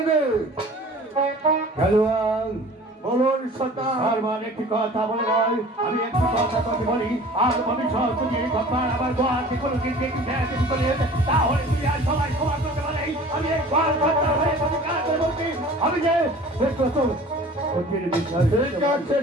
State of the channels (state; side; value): normal; both; correlation 0.45